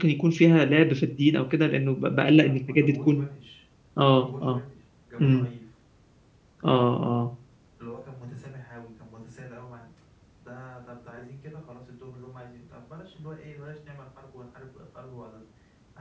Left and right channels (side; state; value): both; identical; correlation 1.00